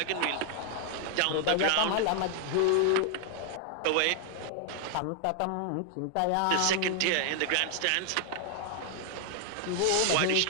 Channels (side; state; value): both; different; correlation 0.00